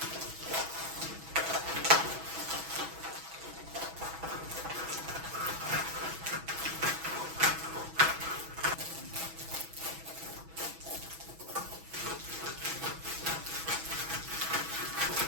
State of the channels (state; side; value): late; left; 6.1 ms